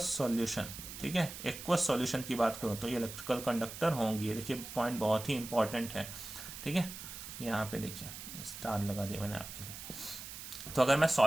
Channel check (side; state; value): right; noise; hiss, 10 dB below the sound